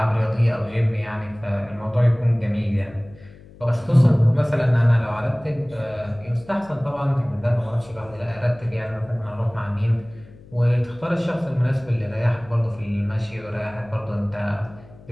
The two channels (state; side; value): noise; left; hum, 22 dB below the sound